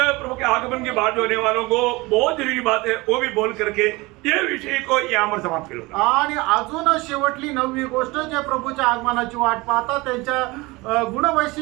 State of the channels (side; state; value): left; quieter; 22.9 dB